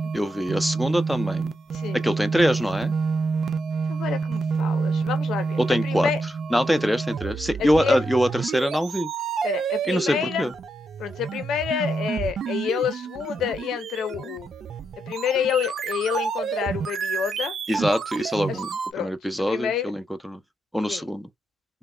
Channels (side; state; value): both; normal; correlation 0.82